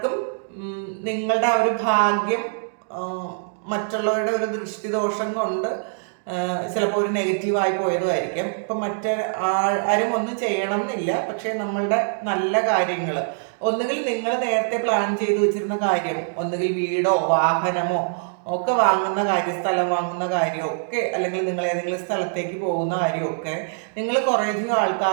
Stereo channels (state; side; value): silent; left; digital silence